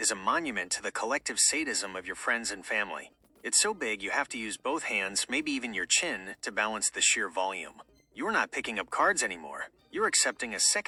a monument to the collective sadism of your friends and family. It's so big you have to use both hands, maybe even your chin, to balance the sheer volume. You're not picking up cards anymore. You're accepting a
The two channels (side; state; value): both; identical; correlation 1.00